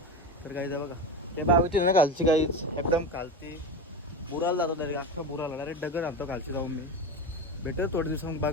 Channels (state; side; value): normal; both; correlation 0.23